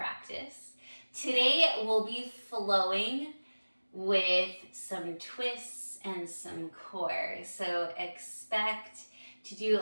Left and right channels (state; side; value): inverted; both; correlation -1.00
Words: Today we'll be flowing with some twists and some core. So expect to do